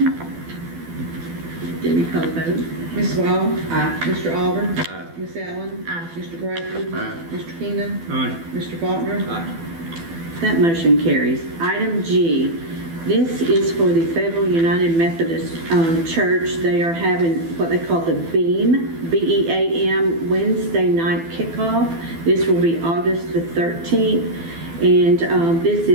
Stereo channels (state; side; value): late; left; 12 ms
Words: Debbie, call the vote. Ms. Small? Mr. Alder? Aye. Ms. Allen? Mr. Bradford? Aye. Mr. Keenan? Aye. Mr. Faulkner? That motion carries. Item G, this is for the Fayetteville United Methodist Church. They are having what they call the BEAM, B-E-A-M, Wednesday night kickoff. This will be August the 13th. And this